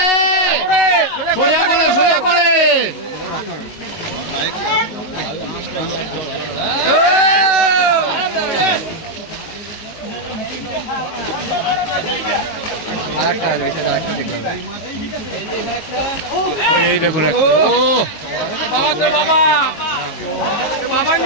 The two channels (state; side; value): late; right; 18 ms